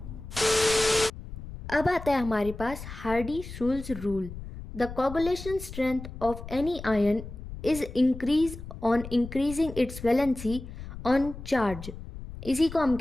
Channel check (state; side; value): noise; left; rumble, 12 dB below the sound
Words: अब आता है हमारे पास हार्डी-शुल्ज़ rule. The coagulation strength of any ion is increased on increasing its valency on charge. इसी को हम